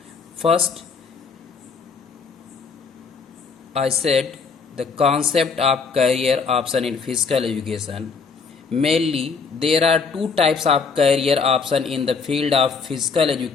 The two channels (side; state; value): right; quieter; 5.2 dB